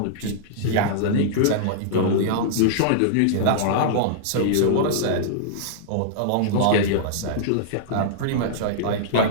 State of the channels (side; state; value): both; different; correlation -0.02